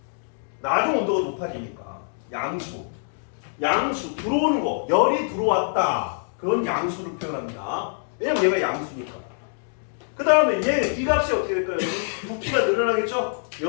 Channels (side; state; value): right; silent; digital silence